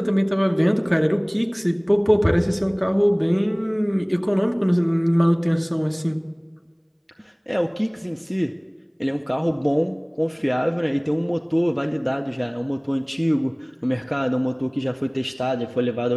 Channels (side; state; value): both; identical; correlation 1.00